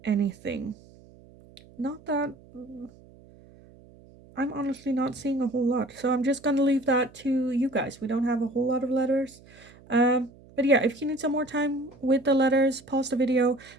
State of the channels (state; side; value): noise; right; hum, 24 dB below the sound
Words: anything. Not that, I'm honestly not seeing a whole lot, so I'm just gonna leave that to you guys. We don't have a whole lot of letters. But yeah, if you need some more time with the letters, pause the video,